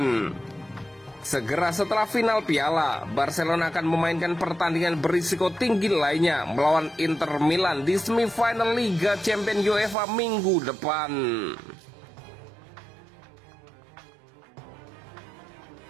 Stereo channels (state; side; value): drops out; left; at 10.0 s